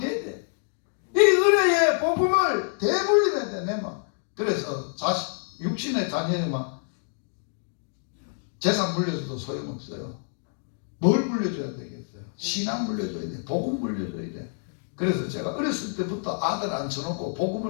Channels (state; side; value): silent; right; digital silence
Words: 돼. 이 은혜의 복음을 대물림해야 돼, 내 맘. 그래서 육신의 자녀에만 재산 물려줘도 소용없어요. 뭘 물려줘야 되겠어요? 신앙 물려줘야 돼. 복음 물려줘야 돼. 그래서 제가 어렸을 때부터 아들 앉혀놓고